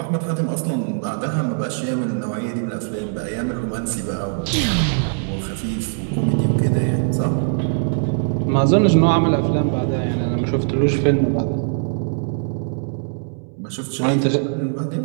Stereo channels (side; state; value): left; silent; 65 dB below the other